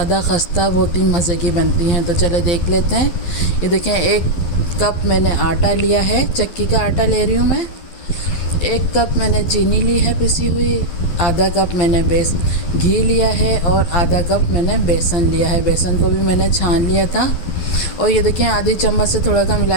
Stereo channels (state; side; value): late; right; 12 ms